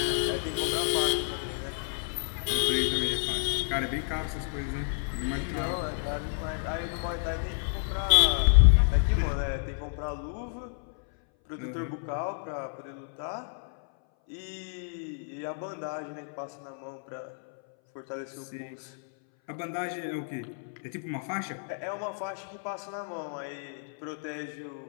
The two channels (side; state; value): right; silent; 58 dB below the other